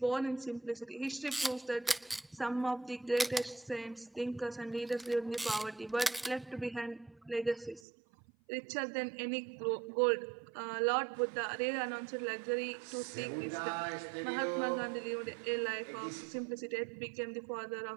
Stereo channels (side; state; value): left; drops out; at 7.8 s